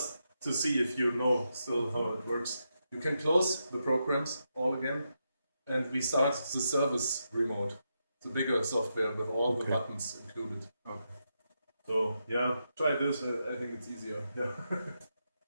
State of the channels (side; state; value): both; inverted; correlation -0.85